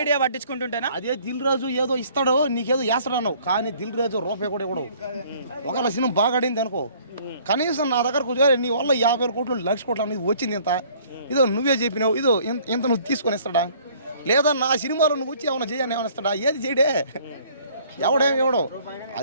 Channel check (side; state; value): both; inverted; correlation -0.57